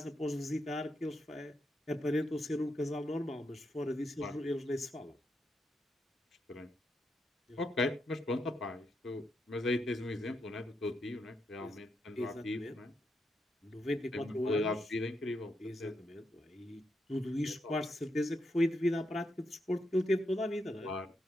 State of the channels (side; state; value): both; normal; correlation 0.82